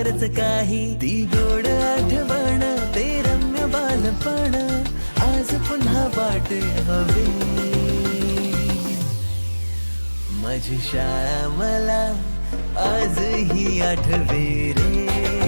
काही, ती गोड आठवण ते रम्य बालपण आज पुन्हा वाट हवी, माझी शाळा मला आजही आठवे रे,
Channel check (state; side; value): inverted; both; correlation -1.00